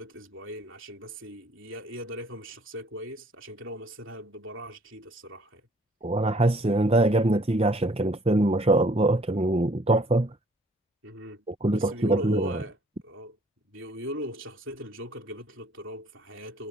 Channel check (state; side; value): normal; both; correlation 0.60